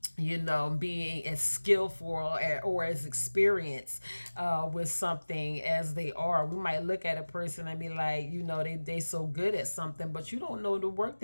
being as skillful or as experienced with something as they are. We might look at a person and be like, they so good at something, but you don't know the work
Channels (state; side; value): inverted; both; correlation -1.00